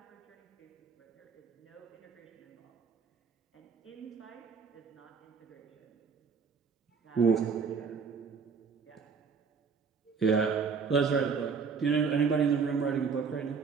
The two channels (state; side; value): quieter; left; 5.7 dB